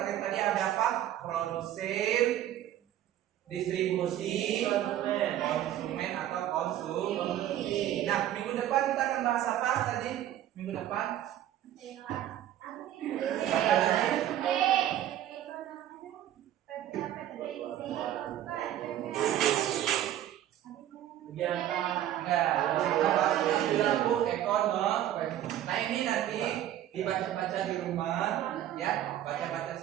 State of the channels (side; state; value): left; quieter; 12.1 dB